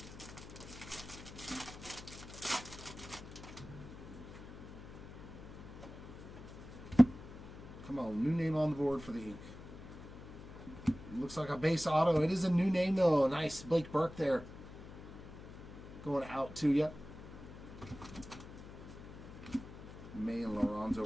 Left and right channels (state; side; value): noise; left; hum, 14 dB below the sound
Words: Come on, new name on the board for the ink. Looks like a base auto. It is a new name, though. Nice. Blake Burke there. Going out to you. May and Lorenzo